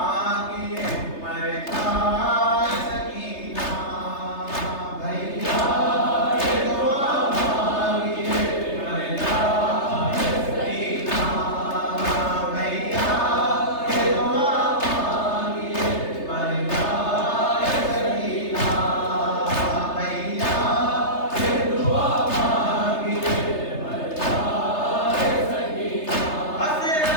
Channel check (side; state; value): right; late; 3.3 ms